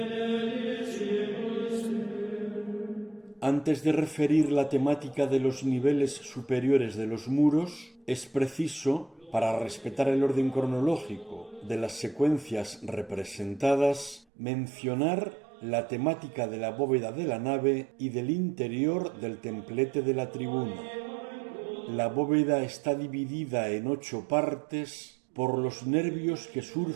Antes de referir la temática de los niveles superiores de los muros, es preciso, para respetar el orden cronológico de las secuencias representadas, mencionar la temática de la bóveda de la nave y del interior del templete de la tribuna. La bóveda está dividida en 8 partes por los nervios que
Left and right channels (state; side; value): drops out; left; at 14.2 s